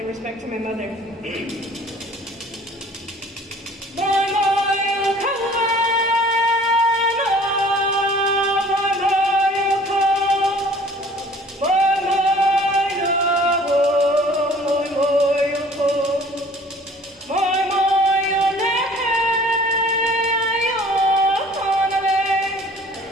respect to my mother.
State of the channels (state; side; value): normal; both; correlation 0.51